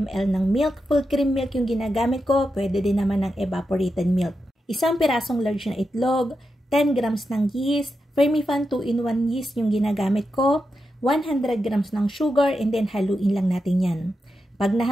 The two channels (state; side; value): normal; both; correlation 0.88